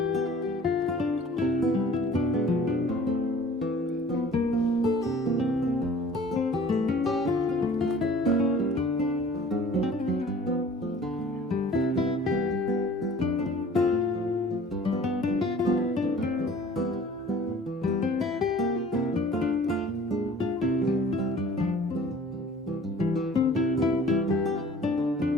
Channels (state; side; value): normal; both; correlation 0.49